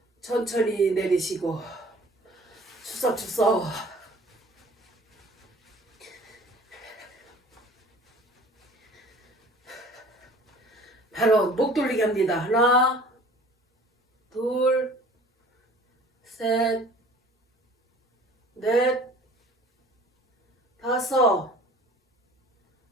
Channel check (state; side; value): normal; both; correlation 0.48